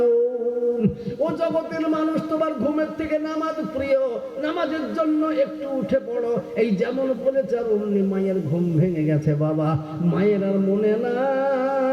ও জগতের মানুষ, তোমার ঘুমের থেকে নামাজ প্রিয়, নামাজের জন্য একটু উঠে পড়ো। এই যেমন বলেছে, আর অমনি মায়ের ঘুম ভেঙে গেছে বাবা। মায়ের আর মনে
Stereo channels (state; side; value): identical; both; correlation 1.00